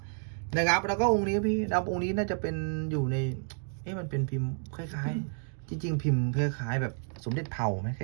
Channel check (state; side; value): silent; left; 56 dB below the other